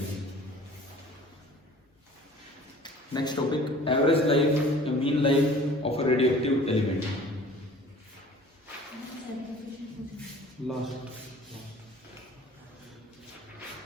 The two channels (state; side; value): normal; both; correlation 0.48